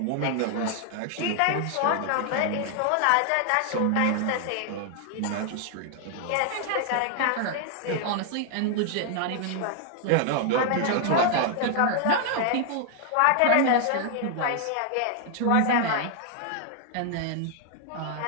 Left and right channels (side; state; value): both; different; correlation 0.00